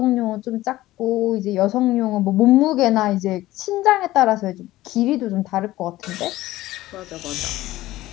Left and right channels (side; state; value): right; quieter; 16.4 dB